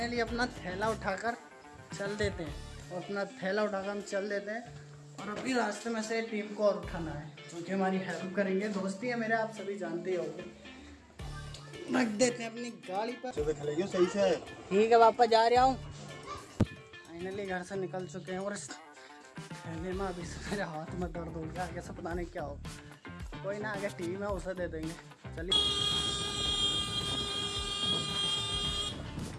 अपना थैला उठाकर चल देते हैं और अपना थैला उठाकर हम चल देते हैं और अभी रास्ते में से टीम को और उठाना है जो कि हमारी हेल्प करेंगे। दोस्ती है मेरे, आप सभी जानते ही होंगे। रख देते हैं अपनी गाड़ी पर। सही से ठीक है, वापस जा रहा हूँ। फाइनली घर से निकल चुके हैं और इस थैले में अभी से मेरे हाथ में दर्द हो गया। आगे से पता नहीं क्या हो। कोई ना, आगे टीम है उसे दे देंगे। चलिए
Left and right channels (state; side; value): identical; both; correlation 1.00